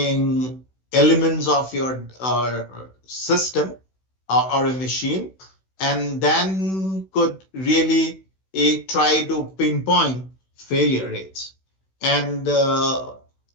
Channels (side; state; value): right; late; 16 ms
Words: elements of your system or a machine, and then could really try to pinpoint failure rates. And